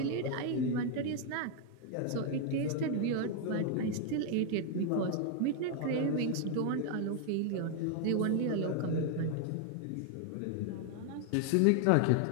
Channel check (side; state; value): both; different; correlation 0.01